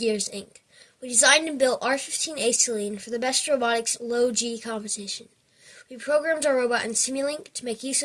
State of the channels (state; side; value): identical; both; correlation 1.00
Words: Inc. We designed and built R15 Acetylene for the Best Robotics Low G competition. We programmed our robot in Simulink to make use